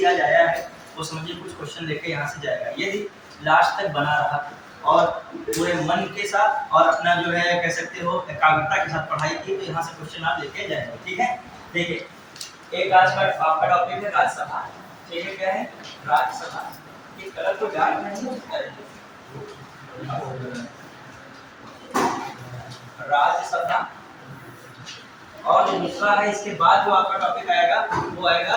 आज आया है वो समझिए कुछ क्वेश्चन लेके यहाँ से जाएगा, यदि लास्ट तक बना रहा और पूरे मन के साथ और अपना जो है कह सकते हो एकाग्रता के साथ पढ़ाई की, तो यहाँ से क्वेश्चन आप लेके जाएंगे। ठीक है, देखिए एक आज का आपका टॉपिक है राज्यसभा। ठीक है, क्या है राज्यसभा। ये कलर को डार्क नहीं राज्यसभा। और जो दूसरा है इसके बाद जो आपका टॉपिक आएगा वो आएगा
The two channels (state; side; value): identical; both; correlation 1.00